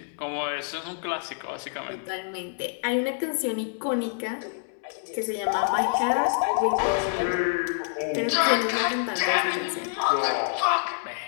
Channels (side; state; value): right; silent; digital silence